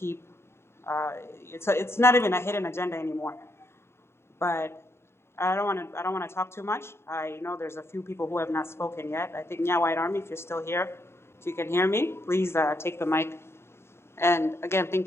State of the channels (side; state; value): right; late; 0.12 ms